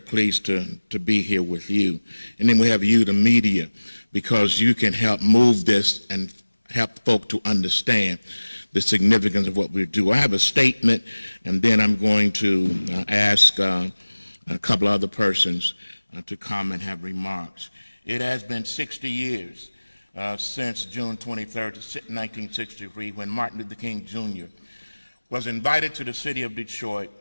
to be here with you. And then we have you, the media, because you can help move this and help folk to understand the significance of what we do. I have a statement, and then I'm going to ask a couple other persons to come and have remarks. It has been 60 years since June 23rd, 1963, when Martin Luther King Jr. was invited to the city of Detroit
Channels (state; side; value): inverted; both; correlation -1.00